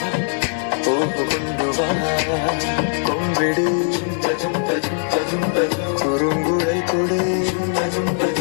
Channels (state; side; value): silent; right; digital silence